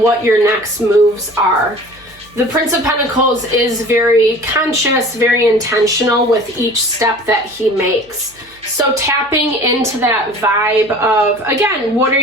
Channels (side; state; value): right; noise; hum, 29 dB below the sound